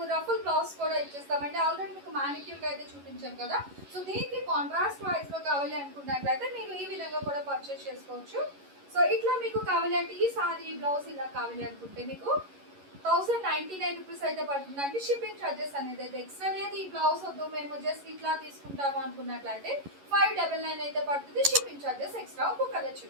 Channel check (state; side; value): late; left; 11 ms